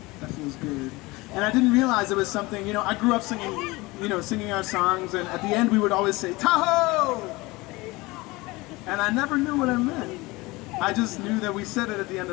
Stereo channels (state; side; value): quieter; right; 22.3 dB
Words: that feels good. And I didn't realize it was something, you know, I grew up singing, singing our songs, and at the end we would always say, Tahoe! And I never knew what I meant. I just knew that we said it at the end